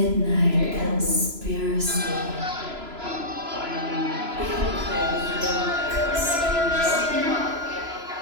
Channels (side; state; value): left; late; 3.0 ms